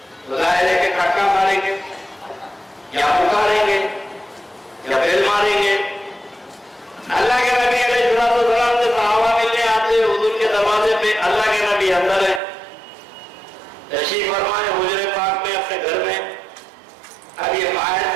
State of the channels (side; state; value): left; drops out; at 12.4 s